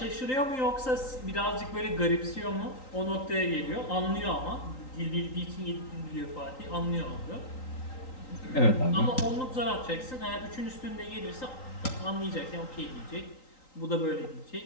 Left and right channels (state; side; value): late; right; 3.9 ms